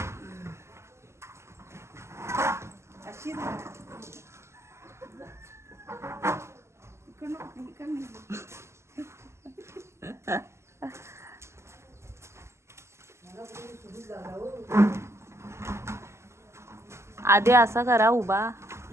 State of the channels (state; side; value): late; left; 0.13 ms